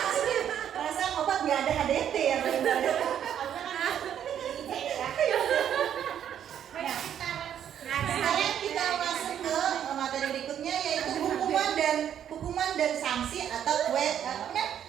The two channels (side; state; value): left; quieter; 9.6 dB